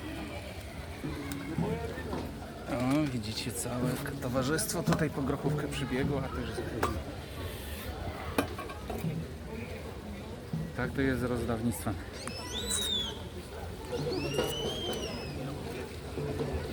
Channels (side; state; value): both; identical; correlation 1.00